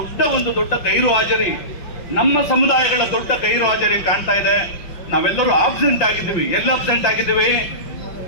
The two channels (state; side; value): late; right; 5.7 ms